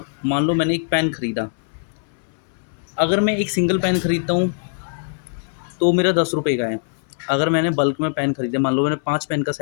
मान लो मैंने एक पेन खरीदा। अगर मैं एक सिंगल पेन खरीदता हूँ तो मेरा 10 रुपये का है। अगर मैंने बल्क में पेन खरीदे, मान लो मैंने 5 पेन का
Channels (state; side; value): silent; right; 64 dB below the other